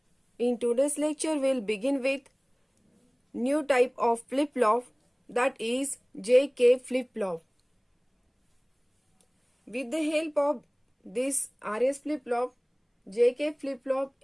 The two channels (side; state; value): both; identical; correlation 1.00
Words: In today's lecture we'll begin with new type of flip-flop, that is JK flip-flop. With the help of this RS flip-flop, JK flip-flop